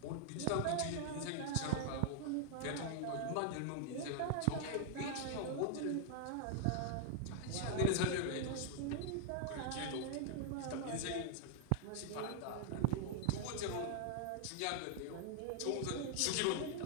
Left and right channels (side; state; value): both; different; correlation -0.01